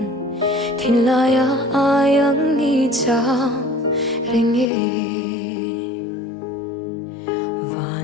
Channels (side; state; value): right; drops out; at 4.7 s